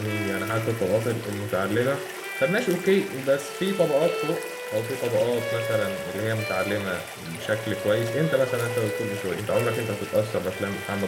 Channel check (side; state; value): both; identical; correlation 1.00